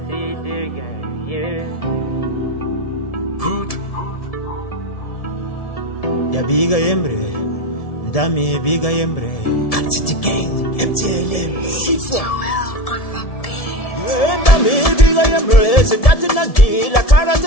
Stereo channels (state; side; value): late; right; 1.7 ms